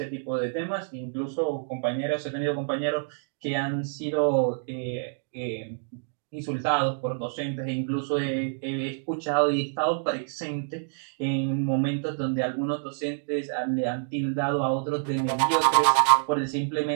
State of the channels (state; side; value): silent; left; digital silence